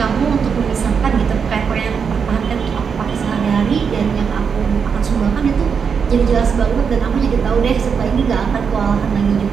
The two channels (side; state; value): left; quieter; 6.3 dB